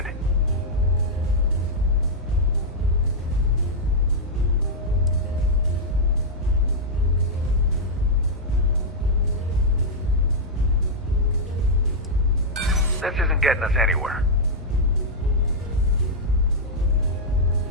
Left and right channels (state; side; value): normal; both; correlation -0.06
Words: This isn't getting us anywhere.